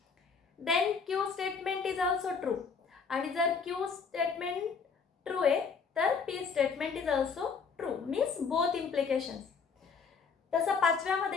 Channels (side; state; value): right; quieter; 5.5 dB